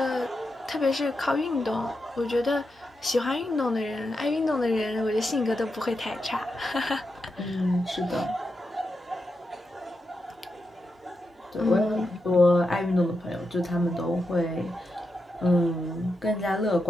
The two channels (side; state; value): both; normal; correlation 0.87